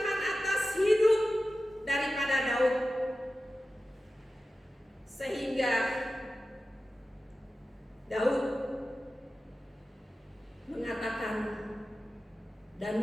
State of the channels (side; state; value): both; normal; correlation 0.94